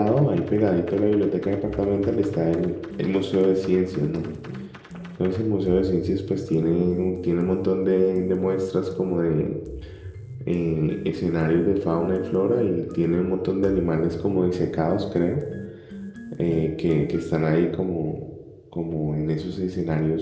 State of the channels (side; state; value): both; identical; correlation 1.00